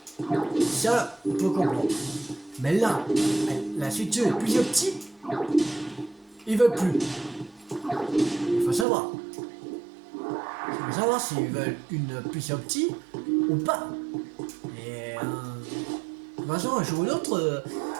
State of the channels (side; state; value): left; drops out; at 8.8 s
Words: ça, on peut comprendre. Mais là, la Switch 2 est plus opti, ils veulent plus. Il faut savoir. Il faut savoir s'ils veulent une plus opti ou pas. Et de toute façon, un jour ou l'autre,